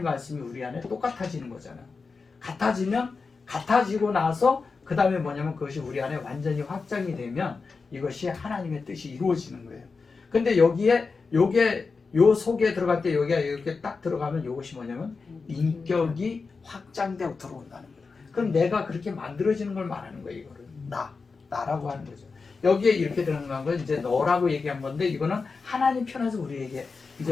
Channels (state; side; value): quieter; right; 4.6 dB